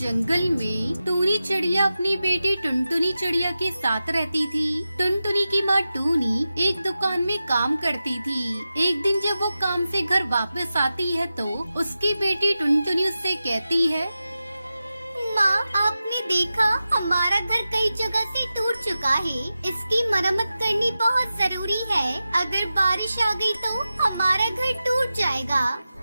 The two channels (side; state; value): both; inverted; correlation -0.93